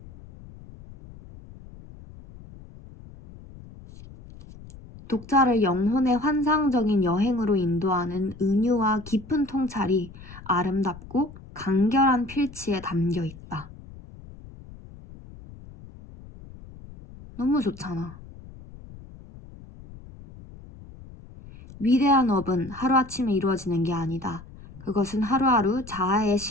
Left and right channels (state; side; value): noise; left; rumble, 18 dB below the sound